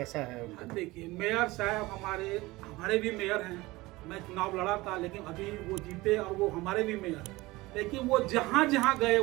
है उनका? देखिए, मेयर साहब हमारे भी मेयर हैं। मैं चुनाव लड़ा था, लेकिन अभी वो जीते और वो हमारे भी मेयर हैं। लेकिन वो जहाँ जहाँ गए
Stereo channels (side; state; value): left; quieter; 20.3 dB